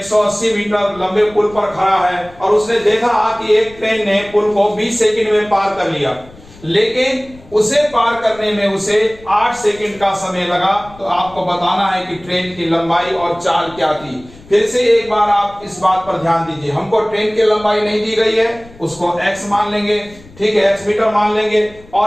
मीटर लंबे पुल पर खड़ा है और उसने देखा कि एक ट्रेन ने पुल को 20 सेकंड में पार कर लिया, लेकिन उसे पार करने में उसे 8 सेकंड का समय लगा। तो आपको बताना है कि ट्रेन की लंबाई और चाल क्या थी। फिर से एक बार आप इस बात पर ध्यान दीजिए, हमको ट्रेन की लंबाई नहीं दी गई है, उसको x मान लेंगे, ठीक है, x मीटर मान लेंगे।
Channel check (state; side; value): noise; left; rumble, 22 dB below the sound